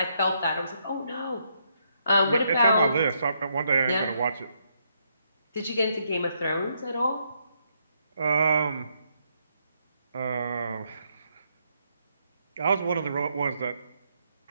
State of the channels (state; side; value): inverted; both; correlation -0.76